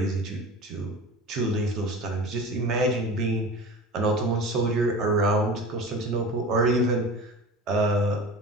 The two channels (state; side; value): normal; both; correlation 0.35